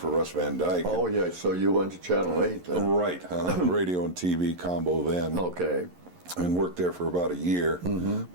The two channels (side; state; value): left; late; 11 ms